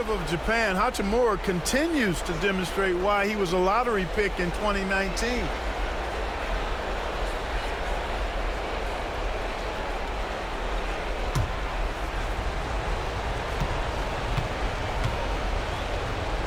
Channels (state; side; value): identical; both; correlation 1.00